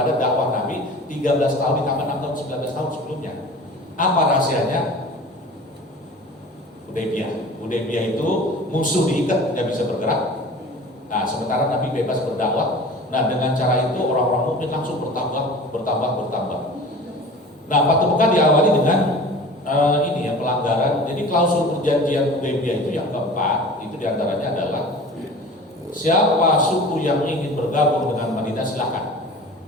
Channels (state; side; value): normal; both; correlation 0.40